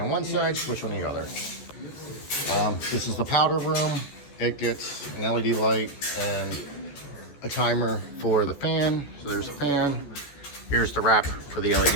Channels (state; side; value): late; right; 14 ms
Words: on one side, switch on the other. This is the powder room. It gets an LED light and a timer for the fan. So there's a fan. Here's the wrap for the